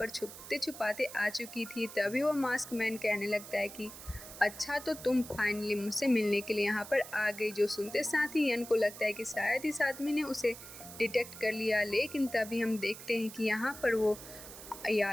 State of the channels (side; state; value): right; noise; hiss, 14 dB below the sound